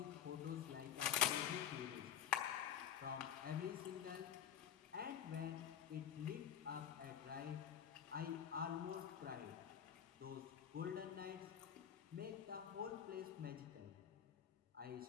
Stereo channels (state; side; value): quieter; right; 9.1 dB